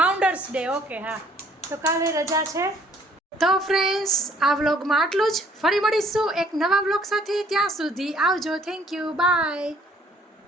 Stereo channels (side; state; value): both; normal; correlation 0.61